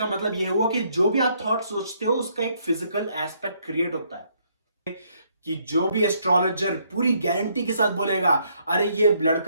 मतलब यह हुआ कि जो भी आप थॉट सोचते हो उसका एक फिजिकल एस्पेक्ट क्रिएट होता है। कि जो भी एस्ट्रोलॉजर पूरी गारंटी के साथ बोलेगा अरे ये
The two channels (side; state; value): both; inverted; correlation -0.70